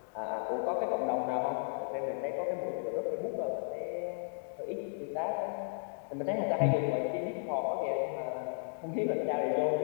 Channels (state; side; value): silent; right; digital silence